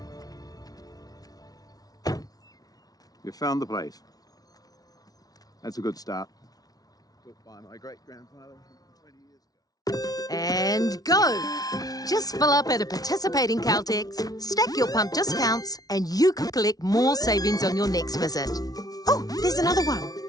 You found the place. That's a good start. Built by my great-grandfather 20 years ago. And go! Just fill up at a participating Caltex, stack your pump discounts, and you could collect more savings on your next visit. Oh, there's another one.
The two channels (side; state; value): right; late; 0.18 ms